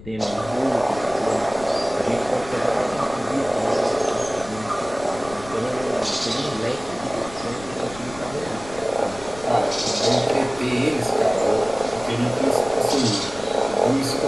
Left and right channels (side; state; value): left; noise; rumble, 17 dB below the sound